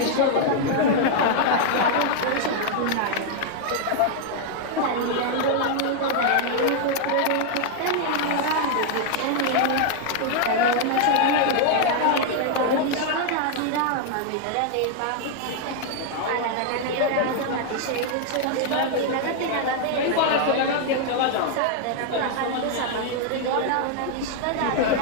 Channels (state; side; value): different; both; correlation 0.00